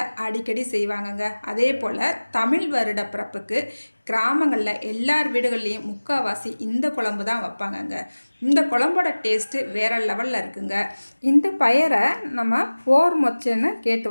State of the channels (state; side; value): inverted; both; correlation -1.00